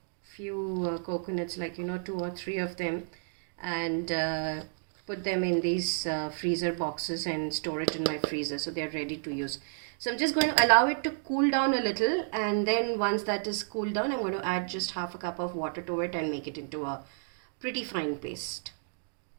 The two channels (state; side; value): silent; left; digital silence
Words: few coconuts, like 2 or 3 of them, and put them in these freezer boxes and store it in my freezer so they are ready to use. So I'm just going to allow it to cool down a little, and then once that is cooled down, I'm going to add just half a cup of water to it and make it into a pretty fine paste.